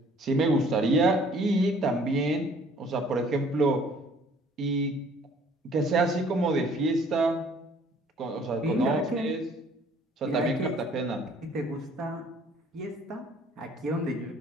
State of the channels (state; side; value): normal; both; correlation 0.57